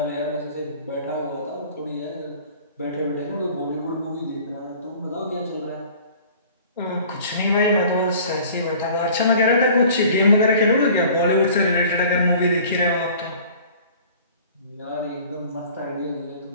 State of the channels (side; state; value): both; inverted; correlation -0.48